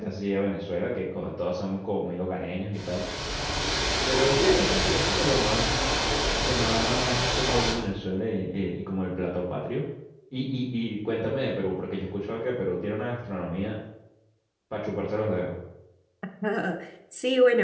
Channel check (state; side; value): identical; both; correlation 1.00